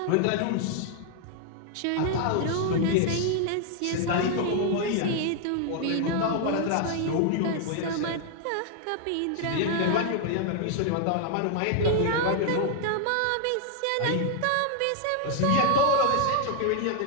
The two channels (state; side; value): different; both; correlation 0.00